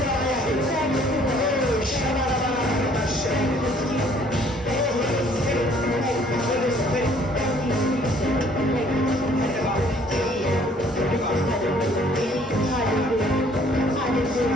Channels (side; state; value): both; normal; correlation 0.59